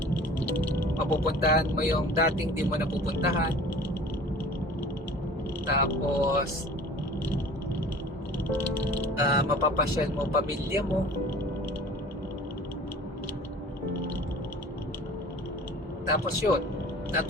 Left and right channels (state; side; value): normal; both; correlation 0.44